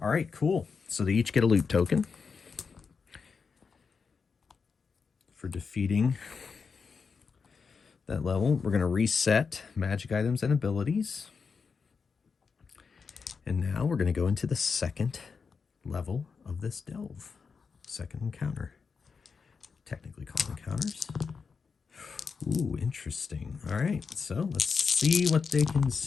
All right, cool. So they each get a loot token for defeating that level. We're going to reset magic items and abilities. And now we're going to go into the 2nd level of this delve. 2nd encounter. Technically called encounters. Ooh, interesting. All right, so let's see what they can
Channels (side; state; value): right; quieter; 5.4 dB